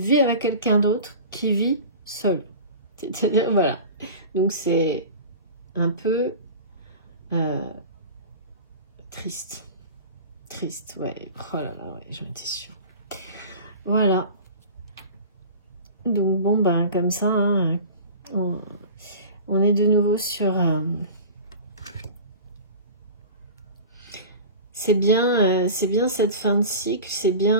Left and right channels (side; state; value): both; inverted; correlation -0.36